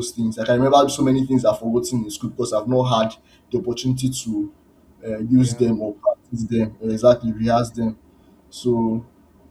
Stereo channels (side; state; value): both; identical; correlation 1.00